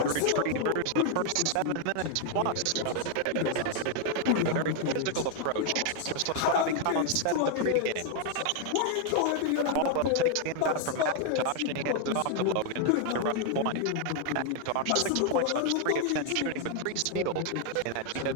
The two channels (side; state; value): both; different; correlation 0.00